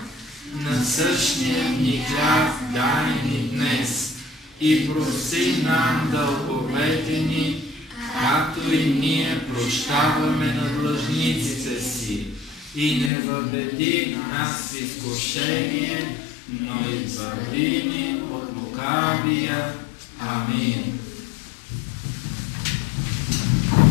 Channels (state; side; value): drops out; right; at 13.1 s